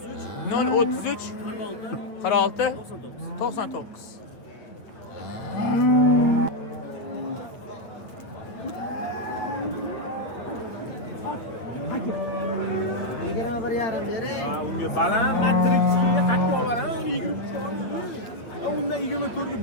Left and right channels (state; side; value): late; right; 8.5 ms